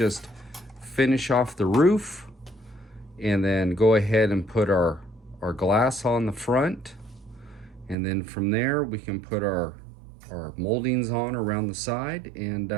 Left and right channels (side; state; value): left; drops out; at 8.0 s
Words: finish off the roof, and then go ahead and put our glass on the front. And then from there, we can put our moldings on around the side, and